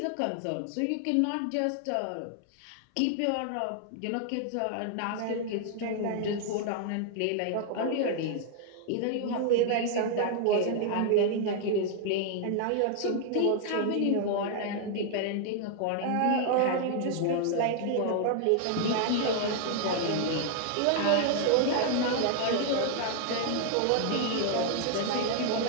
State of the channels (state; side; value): different; both; correlation 0.00